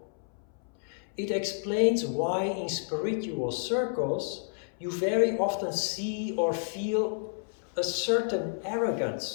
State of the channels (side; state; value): right; silent; 58 dB below the other